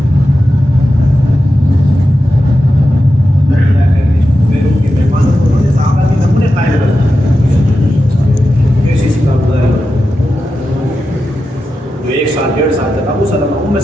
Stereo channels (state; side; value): normal; both; correlation 0.91